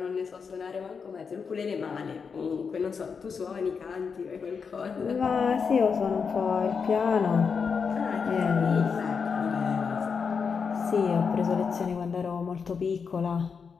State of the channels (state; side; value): quieter; right; 5.8 dB